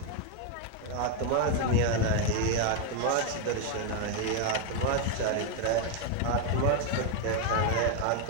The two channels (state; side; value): different; both; correlation 0.01